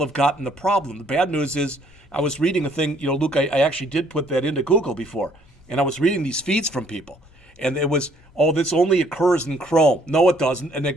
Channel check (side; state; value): both; normal; correlation 0.63